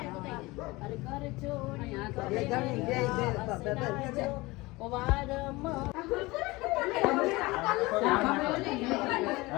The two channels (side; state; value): right; quieter; 21.9 dB